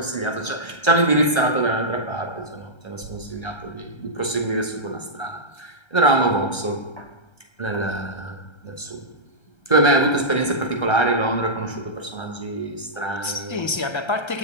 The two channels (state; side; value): late; right; 1.3 ms